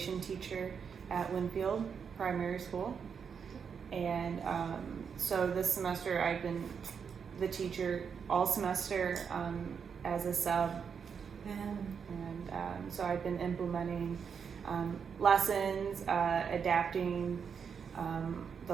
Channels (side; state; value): left; quieter; 6.6 dB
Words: teacher at Winfield Primary School. And so this semester I've been the teacher all semester as a sub. And so I've been implementing lessons, adapting